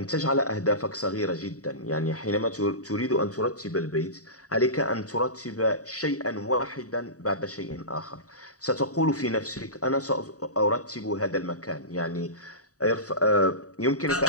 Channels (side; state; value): right; late; 0.66 ms